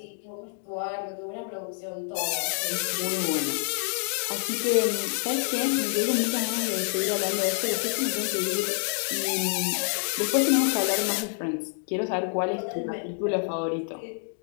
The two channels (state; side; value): silent; right; 60 dB below the other